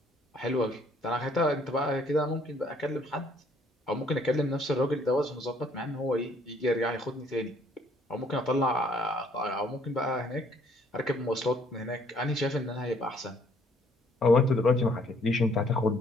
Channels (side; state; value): both; normal; correlation 0.63